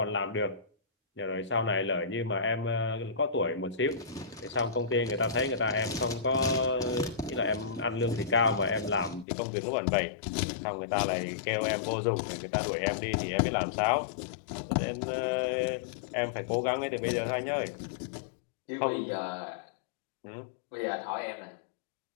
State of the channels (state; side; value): drops out; right; at 9.2 s